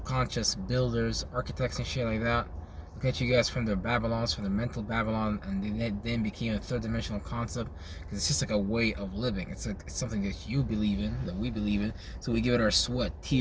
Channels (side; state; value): both; identical; correlation 1.00